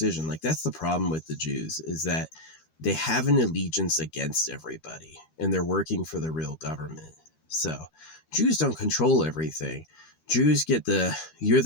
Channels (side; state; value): right; late; 13 ms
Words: Like, that's the problem with the Jews, is that they have an allegiance against everybody and they're working for the real government. So Jews don't control everything. Jews get you're